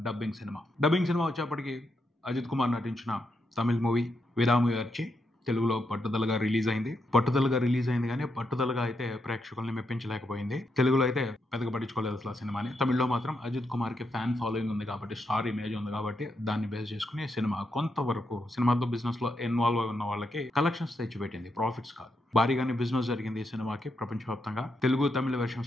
డబ్బింగ్ సినిమా. డబ్బింగ్ సినిమా వచ్చేప్పటికి అజిత్ కుమార్ నటించిన తమిళ మూవీ విరాముయర్చి తెలుగులో పట్టుదలగా రిలీజ్ అయింది కానీ పట్టుదలగా అయితే ప్రేక్షకుల్ని మెప్పించలేకపోయింది. తెలుగులో అయితే పెద్దగా పట్టించుకోలేదు అసలు ఆ సినిమాని. తమిళ్లో మాత్రం అజిత్ కుమార్ కి ఫ్యాన్ ఫాలోయింగ్ ఉంది కాబట్టి, స్టార్ ఇమేజ్ ఉంది కాబట్టి దాన్ని బేస్ చేసుకుని సినిమా కొంతవరకు సినిమాతో బిజినెస్ లో ఇన్వాల్వ్ అయి ఉన్న వాళ్ళకి కలెక్షన్స్ తెచ్చిపెట్టింది, ప్రాఫిట్స్ కాదు. భారీగానే బిజినెస్ జరిగింది ఈ సినిమాకి ప్రపంచవ్యాప్తంగా. తెలుగు తమిళ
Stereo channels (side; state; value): both; normal; correlation 0.82